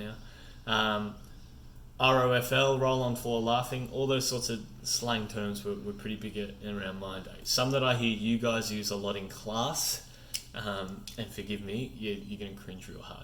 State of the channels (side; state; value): both; identical; correlation 1.00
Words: ROFL, roll on floor laughing. All those sorts of slang terms were pretty big around my day. Some that I hear you guys use a lot in class, and forgive me, you're going to cringe real